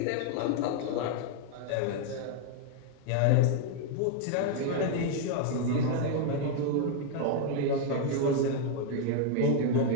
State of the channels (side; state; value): both; different; correlation 0.00